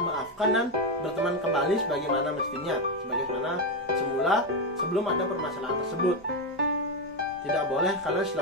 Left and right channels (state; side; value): normal; both; correlation 0.08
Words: dan berteman kembali sebagaimana mestinya, sebagaimana semula sebelum ada permasalahan tersebut. Tidak boleh kalian